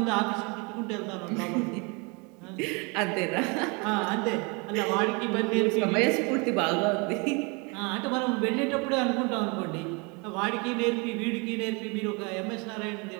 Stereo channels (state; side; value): quieter; left; 30.5 dB